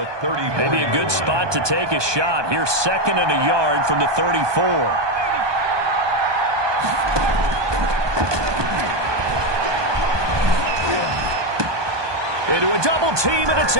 Maybe a good spot to take a shot. Here 2nd and a yard from the 34. Into a double team, and it's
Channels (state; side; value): late; left; 1.2 ms